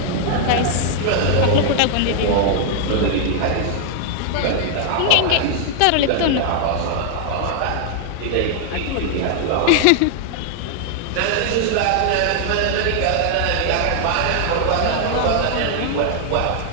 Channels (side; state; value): both; different; correlation 0.00